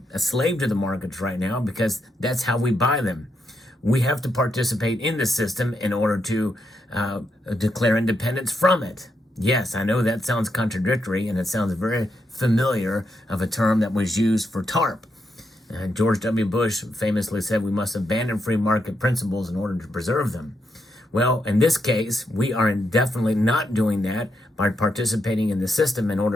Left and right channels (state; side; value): normal; both; correlation 0.81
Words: a slave to the markets right now because that's how we buy them. We have to participate in the system in order to declare independence from it. Yes, I know that sounds contradictory, and it sounds very familiar of a term that was used for TARP. George W. Bush famously said we must abandon free market principles in order to preserve them. Well, in this case, we are definitely not doing that by participating in the system in